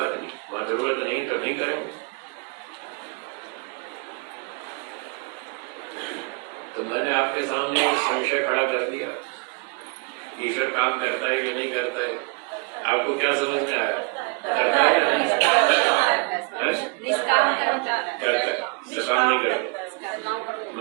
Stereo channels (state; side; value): quieter; left; 32.0 dB